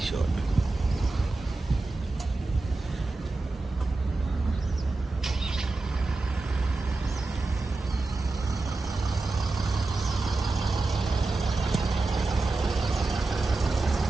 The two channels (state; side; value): quieter; left; 3.3 dB